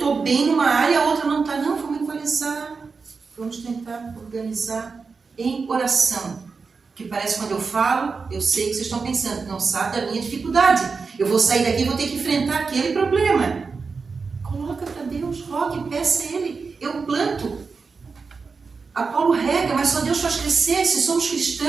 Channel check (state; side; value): quieter; left; 4.8 dB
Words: bem numa área, a outra não está. Não, vamos equalizar. Vamos tentar organizar em oração. Que parece que quando eu falo, eu sei que vocês estão pensando, não sabe da minha dificuldade. Eu vou sair daqui e vou ter que enfrentar aquele problema. Coloca para Deus, rogue, peça a Ele. Eu planto. Apolo rega, mas só Deus faz crescer. Se somos